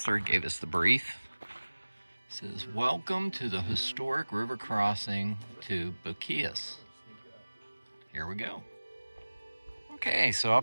gave us the brief. It says, "Welcome to the historic river crossing to Boquillas." Here we go. Okay, so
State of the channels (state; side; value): inverted; both; correlation -1.00